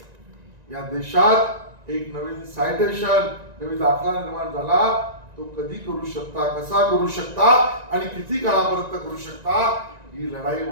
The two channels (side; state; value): left; late; 1.9 ms